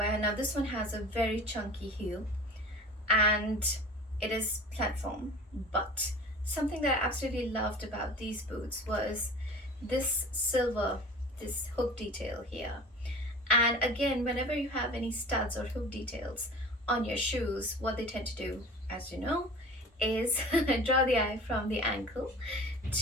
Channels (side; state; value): both; normal; correlation 0.40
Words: Now this one has a very chunky heel and it is platform, but something that I absolutely loved about these boots was this hook detail here. And again, whenever you have any studs or hook details on your shoes, what they tend to do, as you know, is draw the eye from the ankle